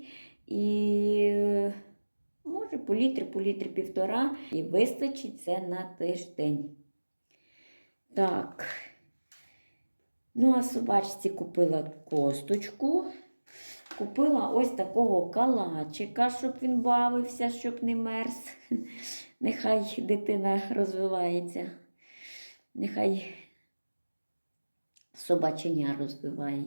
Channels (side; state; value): both; inverted; correlation -1.00